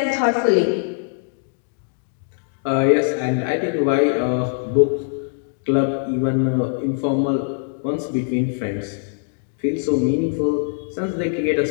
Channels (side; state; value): right; silent; digital silence